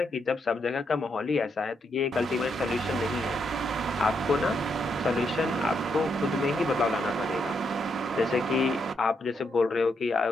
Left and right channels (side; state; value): both; normal; correlation 0.79